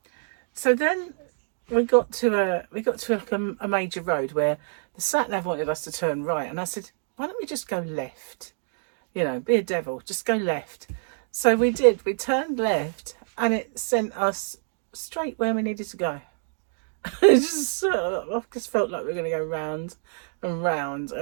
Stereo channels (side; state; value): left; silent; digital silence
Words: So then we got to a major road where the sat nav wanted us to turn right, and I said, why don't we just go left? You know, be a devil, just go left. So we did. We turned left, and it sent us straight where we needed to go. I just felt like we were going to go round and round